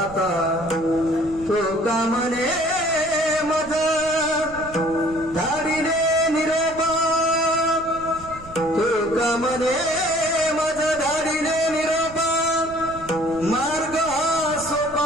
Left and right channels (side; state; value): right; noise; rumble, 18 dB below the sound